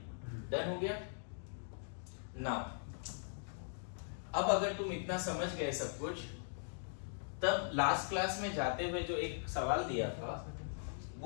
डन हो गया। नाउ अब अगर तुम इतना समझ गए सब कुछ, तब लास्ट क्लास में जाते हुए जो एक सवाल दिया था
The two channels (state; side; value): silent; right; digital silence